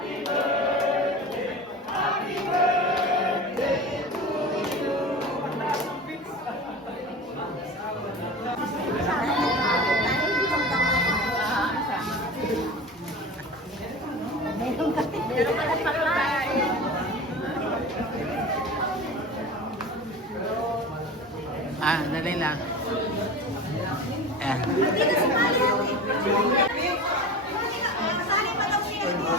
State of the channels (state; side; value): normal; both; correlation 0.32